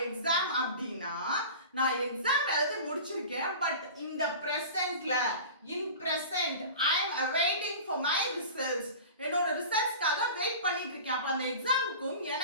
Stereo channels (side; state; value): both; inverted; correlation -0.36